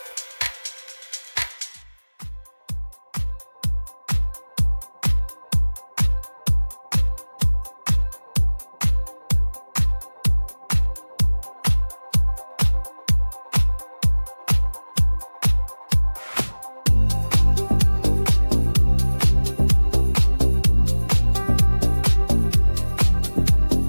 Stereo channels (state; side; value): inverted; both; correlation -1.00